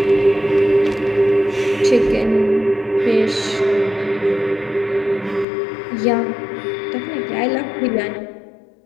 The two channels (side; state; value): right; drops out; at 5.5 s